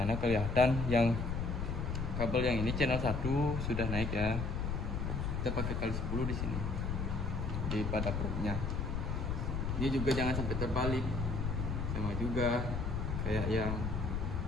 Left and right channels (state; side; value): noise; left; rumble, 1 dB below the sound